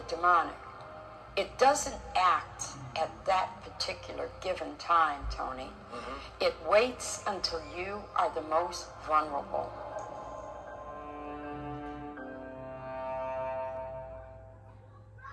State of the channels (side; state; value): both; identical; correlation 1.00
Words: demonic, it doesn't act at that particular given time, Tony. It waits until you are the most vulnerable.